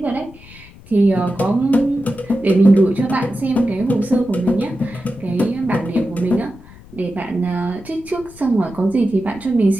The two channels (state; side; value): noise; left; rumble, 21 dB below the sound